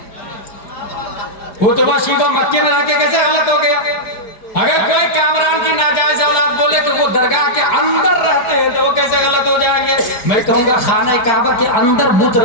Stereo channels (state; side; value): late; right; 4.9 ms